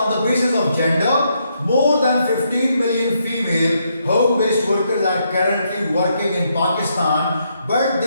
the basis of gender. More than 15 million female home-based workers are currently working in Pakistan, but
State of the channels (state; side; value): inverted; both; correlation -0.77